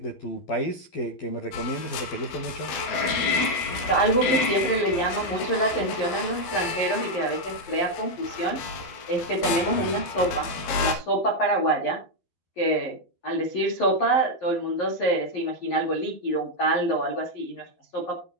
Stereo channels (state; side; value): late; right; 12 ms